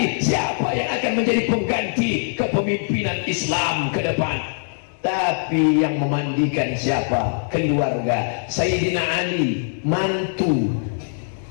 siapa yang akan menjadi pengganti kepemimpinan Islam ke depan. Tapi yang memandikan siapa? Keluarga. Sayyidina Ali, mantu.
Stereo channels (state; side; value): silent; right; digital silence